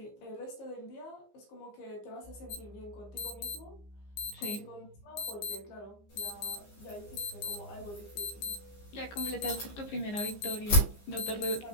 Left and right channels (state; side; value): late; right; 15 ms